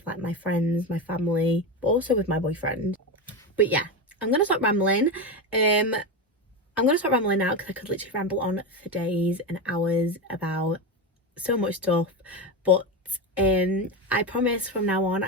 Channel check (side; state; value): both; normal; correlation 0.17